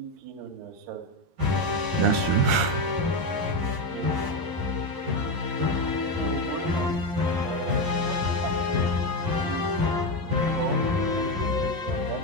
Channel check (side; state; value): left; late; 13 ms